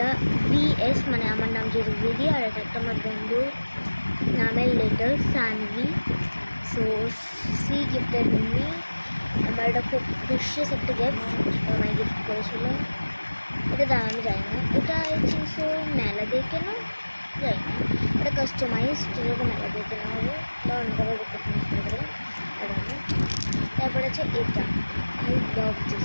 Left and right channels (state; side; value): inverted; both; correlation -1.00